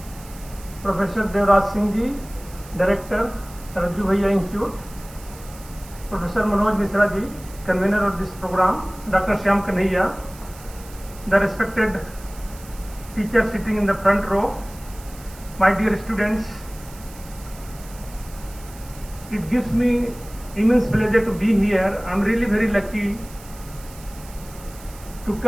Professor Devraj Singh ji, Director, Raju Bhaiya Institute, Professor Manoj Mishra ji, convener of this program, Dr. Shyam Kanhaiya, the respected teacher sitting in the front row, my dear students, it gives me immense pleasure to be here. I am really very lucky to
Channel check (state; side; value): noise; right; hiss, 20 dB below the sound